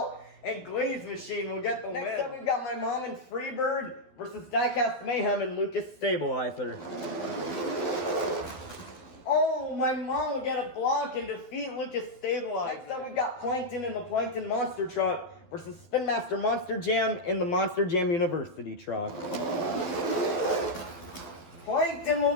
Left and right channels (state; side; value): late; right; 12 ms